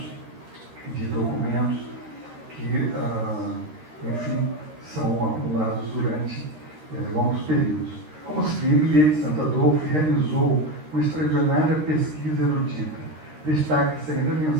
de documentos que, enfim, são acumulados durante longos períodos. Como se vê, Millet de Santo Adolfo realizou uma extraordinária pesquisa erudita. Destaca-se ainda a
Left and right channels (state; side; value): late; left; 13 ms